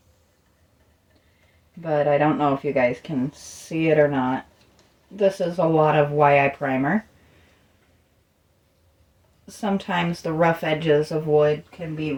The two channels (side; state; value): both; identical; correlation 1.00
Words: But I don't know if you guys can see it or not. This is a lot of YI primer. Sometimes the rough edges of wood can be